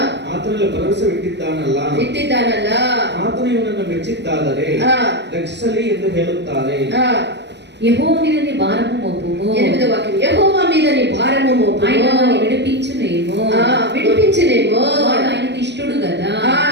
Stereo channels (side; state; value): left; late; 0.50 ms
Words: ಆತನಲ್ಲಿ ಭರವಸೆ ಇಟ್ಟಿದ್ದಾನಲ್ಲ ಆತನು ಇವನನ್ನು ಮೆಚ್ಚಿದ್ದಾದರೆ ರಕ್ಷಿಸಲಿ ಎಂದು ಹೇಳುತ್ತಾರೆ. యెహోవా మీద నీ భారము మోపుము 8వ వాక్యం యెహోవా మీద నీ భారము మోపుము ఆయన వారిని విడిపించునేమో వాడు ఆయనకు ఇష్టడు కదా